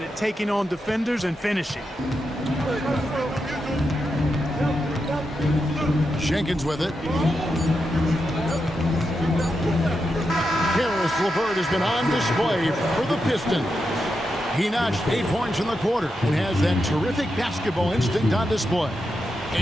at taking on defenders and finishing. Jenkins with it. Karis LeVert has been on display for the Pistons. He notched 8 points in the quarter and has that terrific basketball instinct on display.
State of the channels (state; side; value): normal; both; correlation 0.86